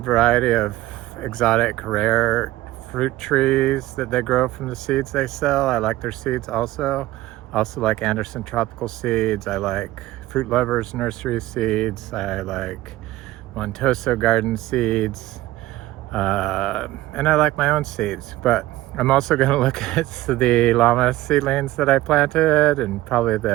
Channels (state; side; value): quieter; left; 16.7 dB